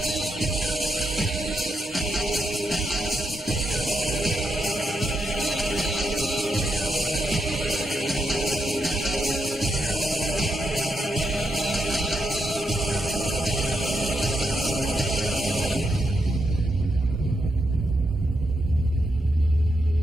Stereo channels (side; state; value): both; normal; correlation 0.82